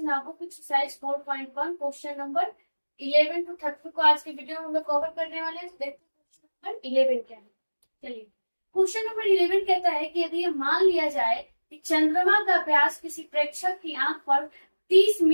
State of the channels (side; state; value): both; inverted; correlation -1.00